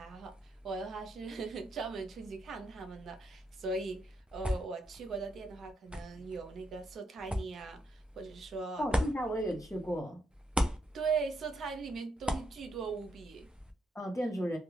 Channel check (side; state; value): both; normal; correlation 0.79